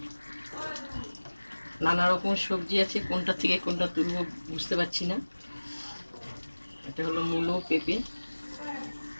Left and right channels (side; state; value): both; inverted; correlation -1.00